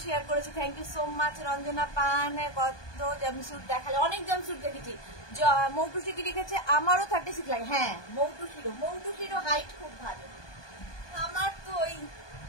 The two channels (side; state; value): right; late; 1.2 ms